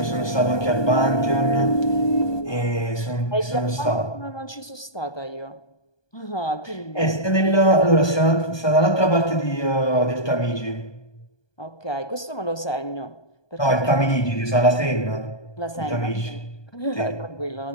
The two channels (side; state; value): right; late; 1.2 ms